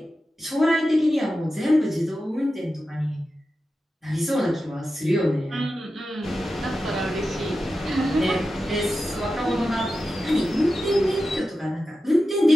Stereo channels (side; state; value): both; normal; correlation 0.92